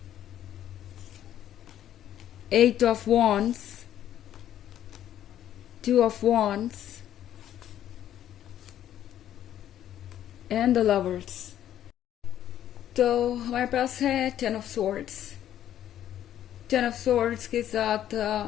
Eight of Wands, Two of Wands, and the Lovers. तो हमारे पास है ten of swords. Ten of swords के साथ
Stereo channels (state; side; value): quieter; right; 11.3 dB